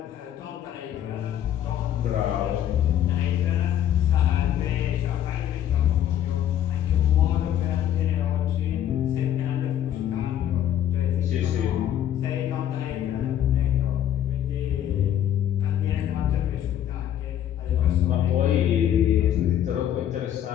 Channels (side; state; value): right; quieter; 10.7 dB